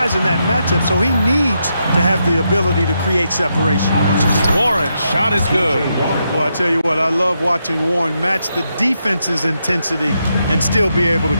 in that matchup, so he needs to have the ability to create separation. Warren's shot is good. Well, I tell you what, I love watching Warren match the defense's intensity and still be able to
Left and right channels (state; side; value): inverted; both; correlation -0.82